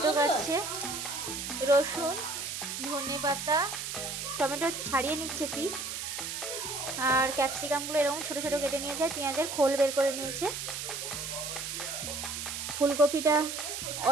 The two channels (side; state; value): right; noise; hiss, 5 dB below the sound